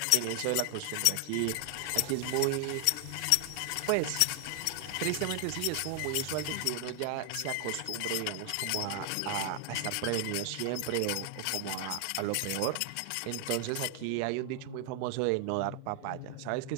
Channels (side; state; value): both; different; correlation 0.00